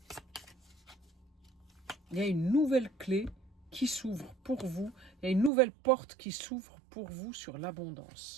Il y a une nouvelle clé qui s'ouvre pour vous. Il y a une nouvelle porte qui s'ouvre pour vous sur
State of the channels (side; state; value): left; drops out; at 5.5 s